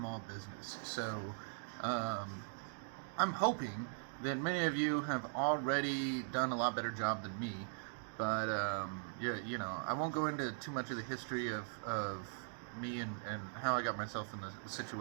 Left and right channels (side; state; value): left; silent; digital silence